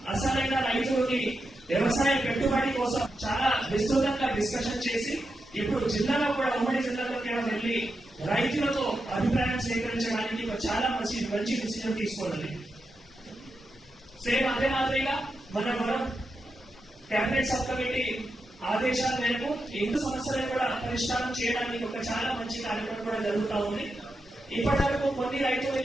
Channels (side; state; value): both; normal; correlation 0.87